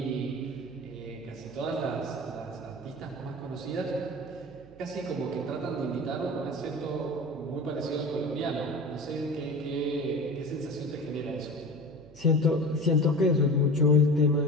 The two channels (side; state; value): right; noise; hum, 22 dB below the sound